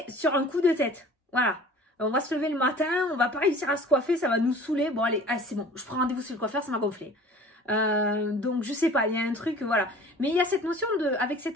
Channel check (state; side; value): normal; both; correlation 0.45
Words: sur un coup de tête. Voilà. On va se lever le matin, on va pas réussir à se coiffer, ça va nous saouler. Bon, allez, ah, c'est bon. Je prends rendez-vous chez le coiffeur, ça m'a gonflé. Donc, je sais pas, il y a un truc, voilà. Mais il y a cette notion de, avec